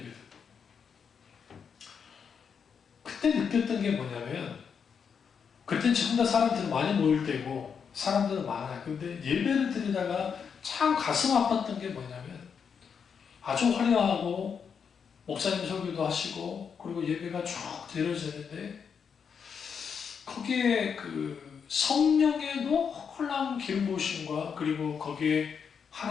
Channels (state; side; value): quieter; right; 6.7 dB